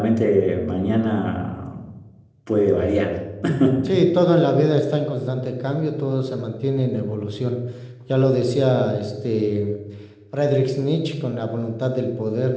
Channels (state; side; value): identical; both; correlation 1.00